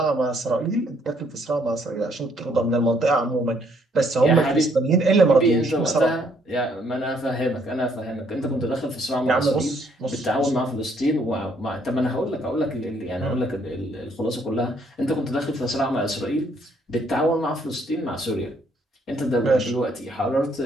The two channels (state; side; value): normal; both; correlation 0.67